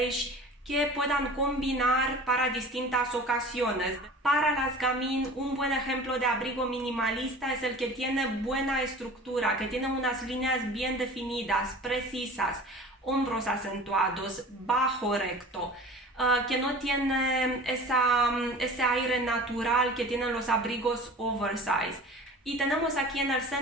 que puedan combinar para distintas ocasiones. Para las gamín, un buen ejemplo de abrigo minimalista es el que tiene buena estructura, que tiene unas líneas bien definidas, precisas, hombros acentuados, bajo recto, que no tiene ese aire natural que tienen los abrigos oversize. Y tenemos aquí en el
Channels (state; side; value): normal; both; correlation 0.41